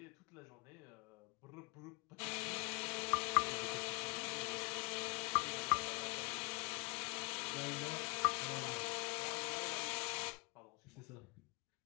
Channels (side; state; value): right; quieter; 28.6 dB